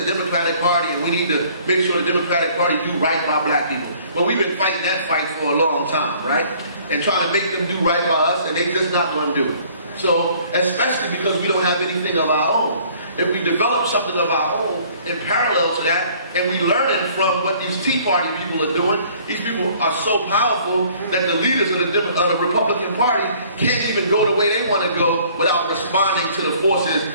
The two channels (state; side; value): inverted; both; correlation -0.56